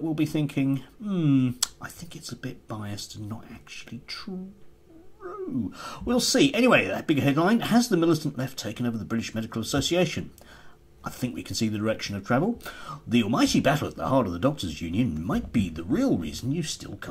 will be thinking, I think it's a bit biased and not actually true. We'll see. Anyway, that big headline: has the militant left taken over the British Medical Association? I think we can see the direction of travel. The almighty battle at the heart of the Doctors' Union might be the real reason you still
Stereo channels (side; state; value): both; identical; correlation 1.00